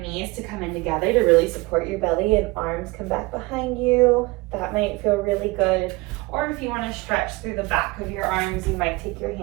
to come in together to really support your belly and arms come back behind you, that might feel really good. Or if you want to stretch through the back of your arms, you might take your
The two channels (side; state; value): left; quieter; 23.3 dB